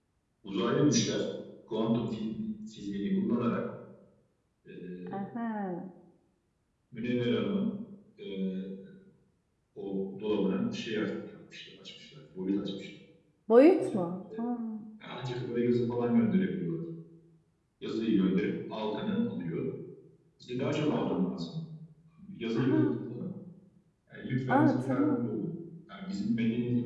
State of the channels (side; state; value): both; identical; correlation 1.00